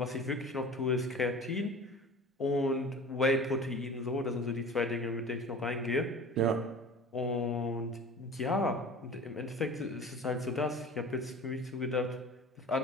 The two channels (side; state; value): both; normal; correlation 0.39